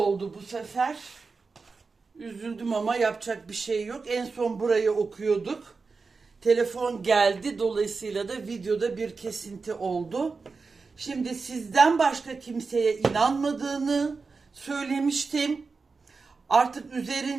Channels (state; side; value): quieter; left; 4.5 dB